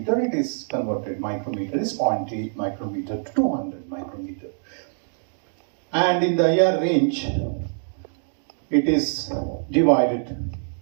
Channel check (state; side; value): silent; left; digital silence